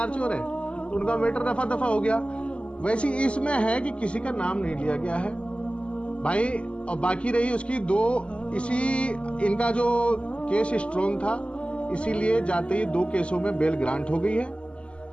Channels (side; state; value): right; late; 0.056 ms